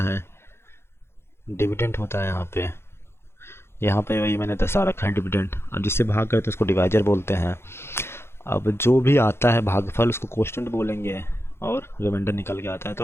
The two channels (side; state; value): right; late; 0.12 ms